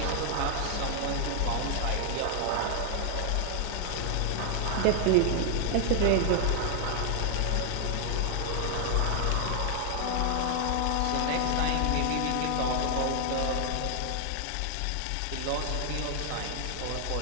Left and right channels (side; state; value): both; different; correlation 0.00